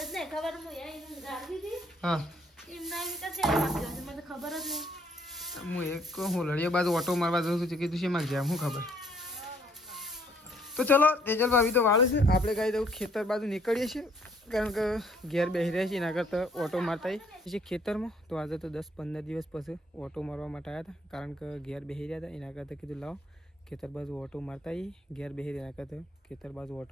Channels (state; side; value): normal; both; correlation 0.64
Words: હા હું એક હોલડીયા બાજુ ઓટો મારવા જઉં છું કીધું છે મારે જાય શું ખબર તો ચલો તેજલ ભાભી તો વાળું છે આપણે કાંઈ દઉં ખેતર બાજુ નીકળીએ છીએ કારણ કે ઘેર બેસી રહ્યા છીએ એના કરતાં ઓટો મારતા છીએ ખેતરમાં તો આજે તો 10-15 દિવસ પછી ઓટો મારવા માટે આવ્યા હતા કારણ કે ઘેર બેસી રહ્યા હતા એના કરતાં કીધું લાવો ખેતર બાજુ ઓટો મારતા આવીએ ઘેર બેસી રહ્યા એના કરતાં ખેતર બાજુ